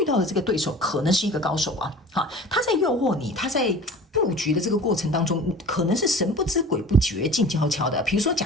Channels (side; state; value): both; normal; correlation 0.40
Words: 到的这个对手可能是一个高手他在诱惑你，他在布局的这个过程当中，可能是神不知鬼不觉静悄悄的。比如说